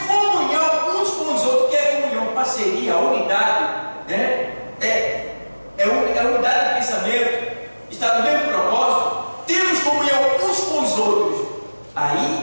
comunhão uns com os outros. Que é comunhão? Parceria, unidade, né? É unidade de pensamento, está no mesmo propósito. Temos comunhão uns com os outros.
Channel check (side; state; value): both; inverted; correlation -1.00